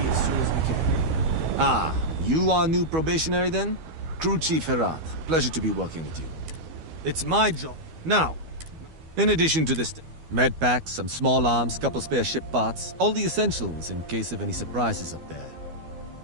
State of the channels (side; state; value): left; late; 12 ms